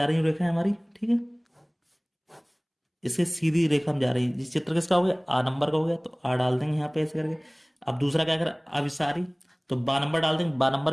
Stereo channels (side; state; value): both; identical; correlation 1.00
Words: रही है रेखा हमारी। ठीक है, इसके सीधी रेखा में जा रही है। जिस चित्र किसका हो गया, आ नंबर का हो गया, तो आ डाल देंगे यहाँ पे ऐसे करके। अब दूसरा क्या करें, अभिसारी, तो बा नंबर डाल देंगे, बा